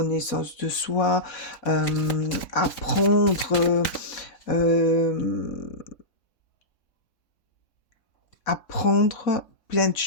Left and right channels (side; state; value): right; late; 3.6 ms